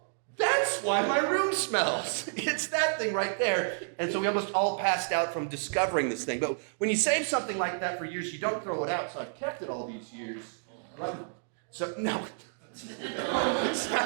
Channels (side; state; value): left; silent; digital silence